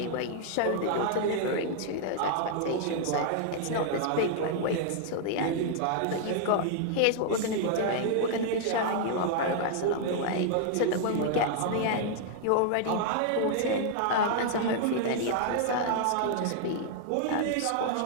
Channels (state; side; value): different; both; correlation -0.01